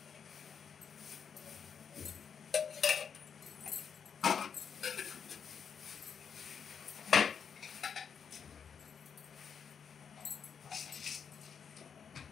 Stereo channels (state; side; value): quieter; right; 7.0 dB